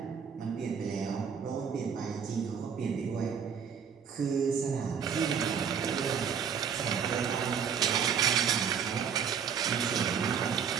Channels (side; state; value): left; quieter; 7.1 dB